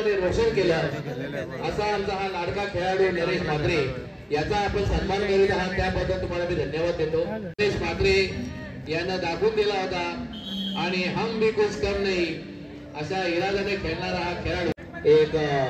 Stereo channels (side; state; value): both; identical; correlation 1.00